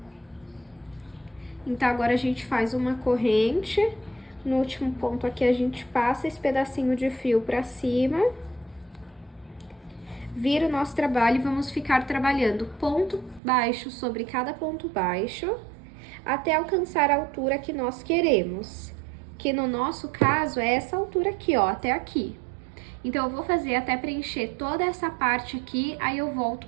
Então, agora a gente faz uma corrente. No último ponto aqui, a gente passa esse pedacinho de fio pra cima. Vira o nosso trabalho e vamos ficar trabalhando ponto baixo sobre cada ponto baixo, até alcançar a altura que nós queremos. Que no nosso caso é essa altura aqui, ó, até aqui. Então, eu vou fazer até preencher toda essa parte aqui, aí eu volto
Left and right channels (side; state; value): left; drops out; at 13.4 s